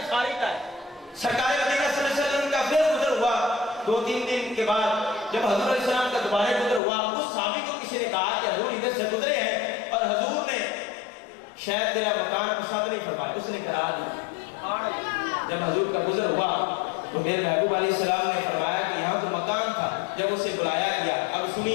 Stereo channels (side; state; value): right; drops out; at 6.8 s